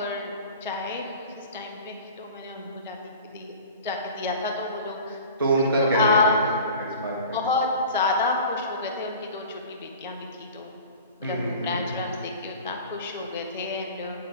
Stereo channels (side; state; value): both; inverted; correlation -0.40